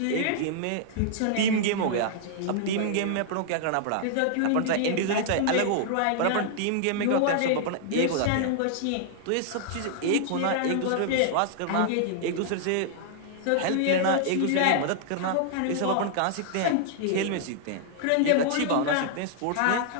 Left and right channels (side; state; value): both; different; correlation -0.01